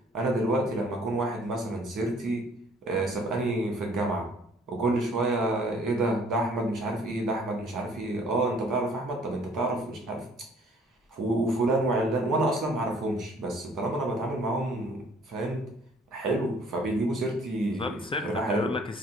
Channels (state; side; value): normal; both; correlation 0.58